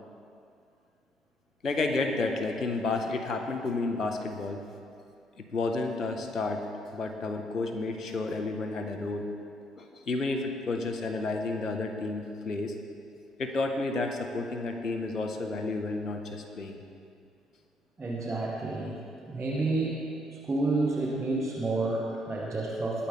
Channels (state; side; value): normal; both; correlation 0.71